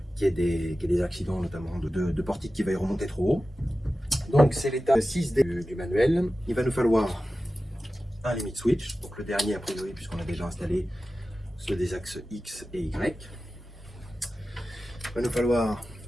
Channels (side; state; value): both; normal; correlation 0.94